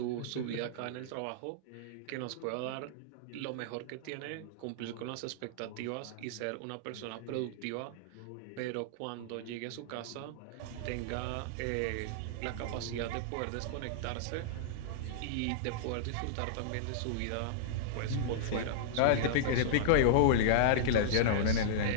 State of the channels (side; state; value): both; different; correlation -0.02